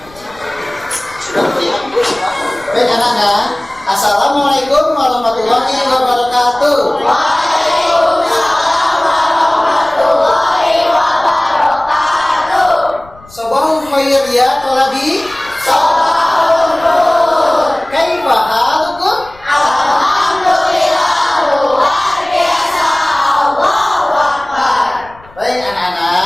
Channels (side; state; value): left; noise; rumble, 24 dB below the sound